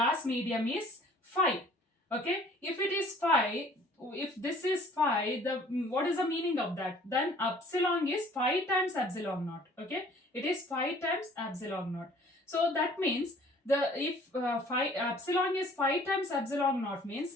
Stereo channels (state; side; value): normal; both; correlation 0.54